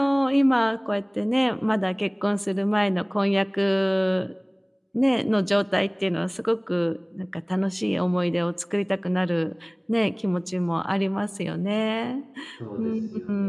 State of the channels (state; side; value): identical; both; correlation 1.00